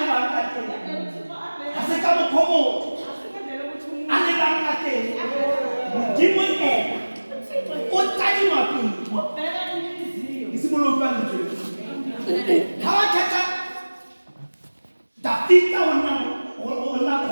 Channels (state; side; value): inverted; both; correlation -1.00